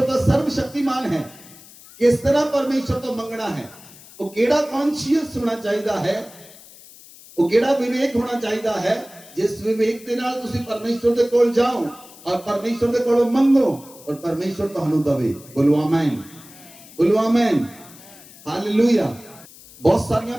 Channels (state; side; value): noise; left; hiss, 21 dB below the sound